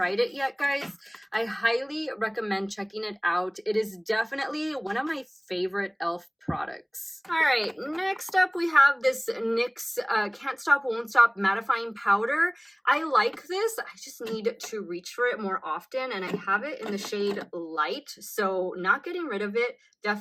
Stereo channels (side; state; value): both; identical; correlation 1.00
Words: it yet, guys, I highly recommend checking it out. It is definitely one of my favorite e.l.f. products. All right, next up we have this NYX Can't Stop Won't Stop Mattifying Powder. I like this. I just need to reach for it more often, and I have it in the shade Light, so not getting rid of it.